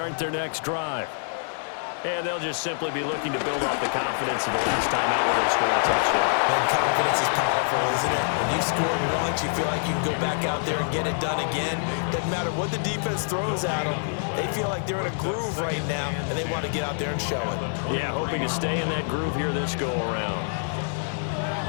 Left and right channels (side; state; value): right; silent; 61 dB below the other